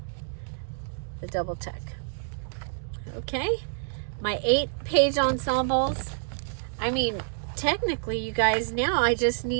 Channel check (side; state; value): left; silent; 59 dB below the other